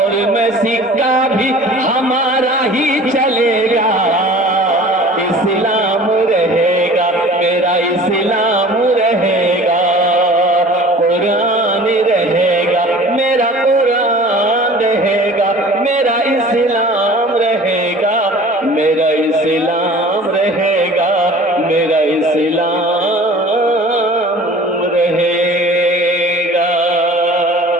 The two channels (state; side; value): normal; both; correlation 0.45